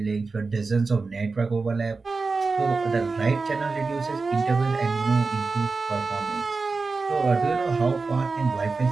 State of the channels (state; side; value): quieter; left; 4.1 dB